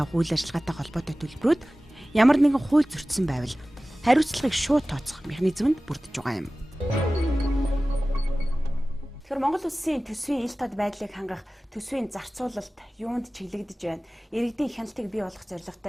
үйл ажиллагаатай холбоотой төлбөрүүд ямар нэгэн хууль зөрчсөн байвал хариуцлагыг шууд тооцох механизмд бүрдэж байгаа юм. Тэгэхээр Монгол улсын төсвийн ил тод байдлыг хангах төсвийн зарцуулалт юунд чиглэгдэж байна? Иргэдийн хяналтыг бий болгох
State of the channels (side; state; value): both; normal; correlation 0.97